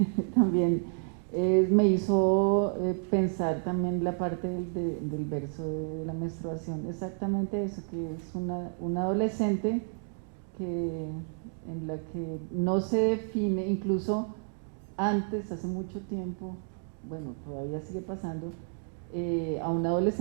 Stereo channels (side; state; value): left; silent; 57 dB below the other